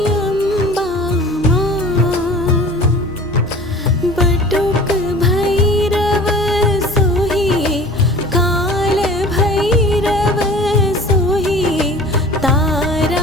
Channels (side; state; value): both; normal; correlation 0.42